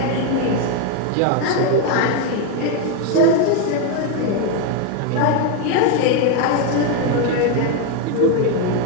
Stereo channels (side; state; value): both; different; correlation 0.01